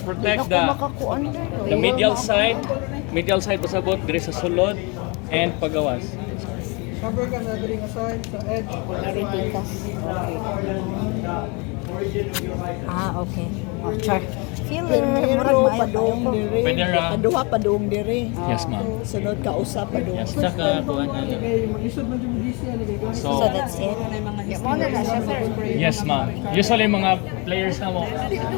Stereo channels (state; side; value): quieter; right; 30.1 dB